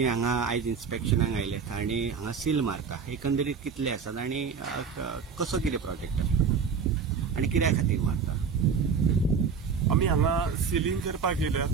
हांगा आयज इन्स्पेक्शनाक आयल्यात आणि हांगा सील मारता एकंदरीत कितले आसात आणि कसो कितें प्रोजेक्ट आसता आणि कित्या खातीर मारता? आमी हांगा सिलींग करपाक येयल्यात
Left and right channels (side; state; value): left; quieter; 6.0 dB